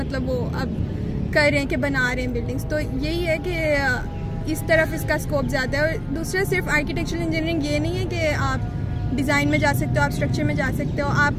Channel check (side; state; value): both; identical; correlation 1.00